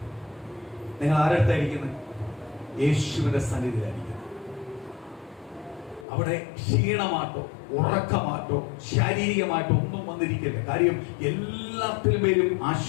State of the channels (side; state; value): right; drops out; at 6.1 s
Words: നിങ്ങൾ ആരടുത്തായിരിക്കുന്നത്? യേശുവിന്റെ സന്നിധിയിലായിരിക്കുന്നത്. അവിടെ ക്ഷീണമാട്ടോ ഉറക്കമാട്ടോ ശാരീരികമായിട്ടോ ഒന്നും വന്നിരിക്കില്ല. കാര്യം എല്ലാത്തിലും പേരും